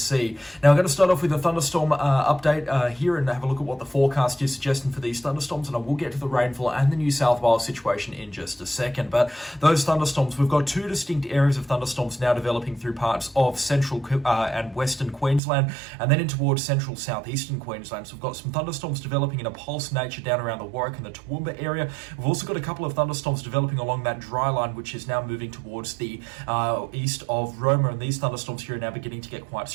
Now, I'm going to start off with a thunderstorm update here and have a look at what the forecast is suggesting for these thunderstorms, and I will get to the rainfall and the New South Wales situation in just a second. But those thunderstorms, we've got two distinct areas of thunderstorms now developing through parts of central and western Queensland, and then in towards central southeastern Queensland. So we've got some thunderstorms developing in a pulse nature down around the Warwick and the Toowoomba area. We've also got a couple of thunderstorms developing along that dry line, which is now moving towards the east of Roma, and these thunderstorms here are now beginning to get quite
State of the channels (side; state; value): left; drops out; at 15.4 s